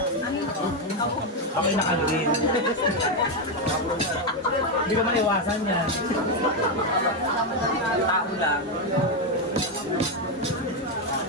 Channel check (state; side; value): normal; both; correlation 0.06